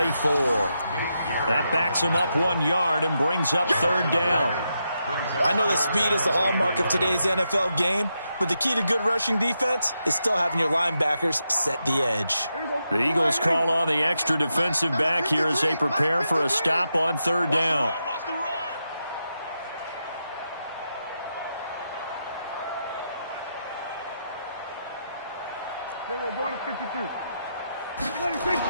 That backs him up 1 yard and brings up 3rd down. I know that speed is the hallmark of today's NFL game, but the key to good rushing defense is still having your linebackers set the edge. The Eagles call on the extra defensive back here as they prepare for a stop on 3rd down.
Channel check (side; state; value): both; inverted; correlation -0.85